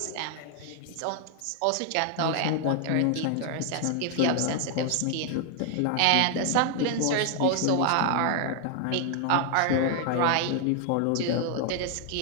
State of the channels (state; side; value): different; both; correlation 0.00